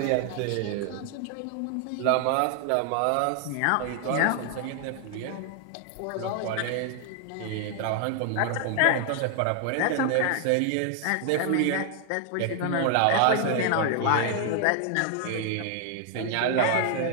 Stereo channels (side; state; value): both; different; correlation 0.00